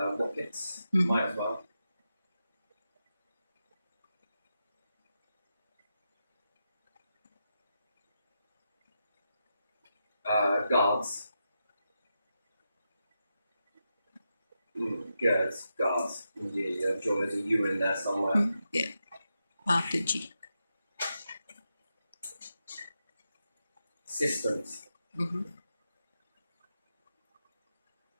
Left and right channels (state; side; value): inverted; both; correlation -0.87